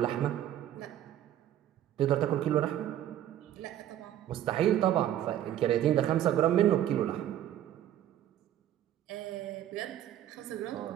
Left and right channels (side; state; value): left; quieter; 11.6 dB